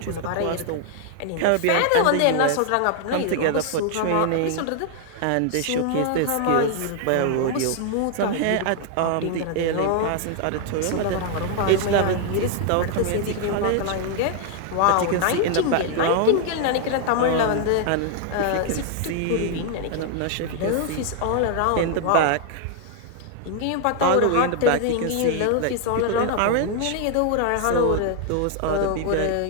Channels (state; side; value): different; both; correlation 0.00